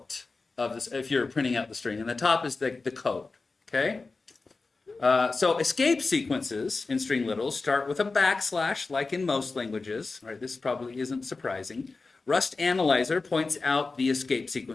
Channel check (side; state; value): right; quieter; 3.9 dB